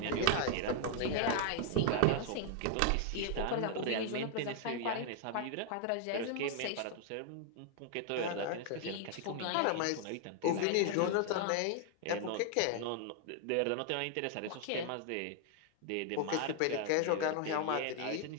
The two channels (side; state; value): both; different; correlation 0.00